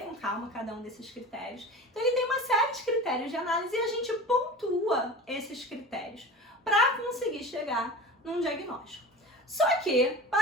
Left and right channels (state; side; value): normal; both; correlation 0.34